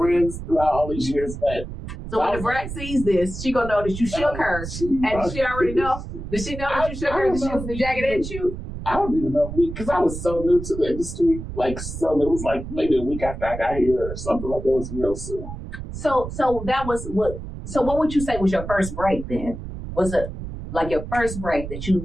throughout all these years, but. So when the brat sees this, she gonna know that you shook her, and she already know. Does she know that you shook her? Did she the Jagged Edge shoot? I don't even know, because I was so new to the industry. It was like maybe a week after I got here or something like that. It was real soon. So that was what. So what would you say was your first break then? Was it like your first break that you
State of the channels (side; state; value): right; noise; rumble, 9 dB below the sound